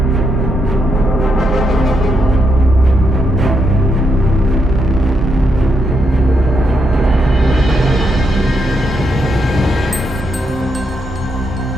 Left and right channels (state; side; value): normal; both; correlation 0.80